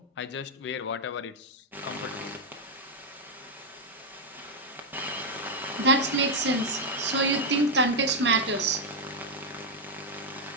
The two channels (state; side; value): normal; both; correlation 0.02